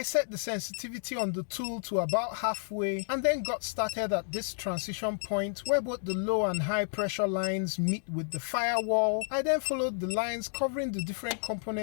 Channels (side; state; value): right; silent; digital silence